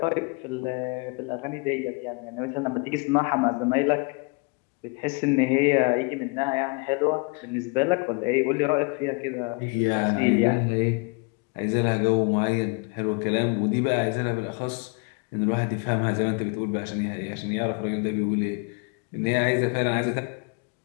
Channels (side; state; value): right; quieter; 31.6 dB